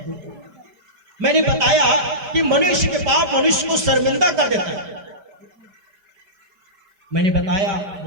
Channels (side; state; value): left; late; 5.1 ms